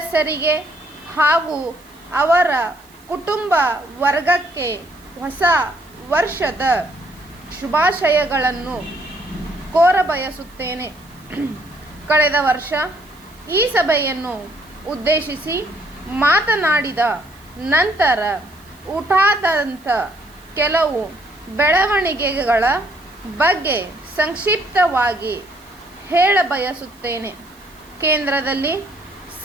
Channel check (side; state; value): right; noise; hiss, 28 dB below the sound